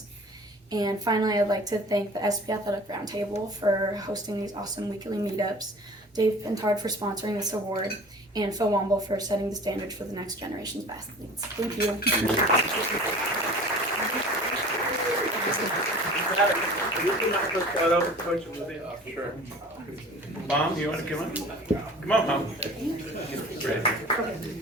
And finally, I'd like to thank the SB Athletic Roundtable for hosting these awesome weekly meetups, Dave Pintard for sponsoring this award, and Phil Womble for setting the standard for the next generation's athletes. Thank you. Sure. Mom, you want to come on? Come on, Mom. Great.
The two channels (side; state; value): both; normal; correlation 0.43